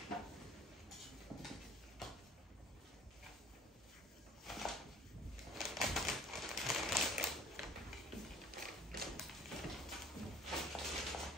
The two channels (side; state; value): both; normal; correlation 0.50